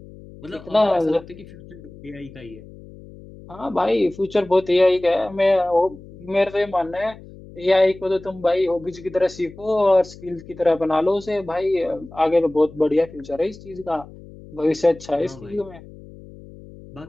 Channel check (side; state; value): left; noise; hum, 19 dB below the sound